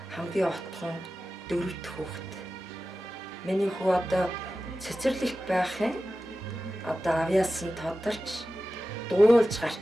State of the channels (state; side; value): normal; both; correlation 0.94